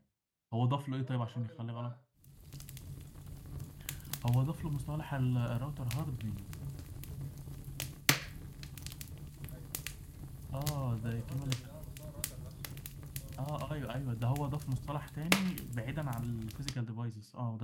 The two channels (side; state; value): both; identical; correlation 1.00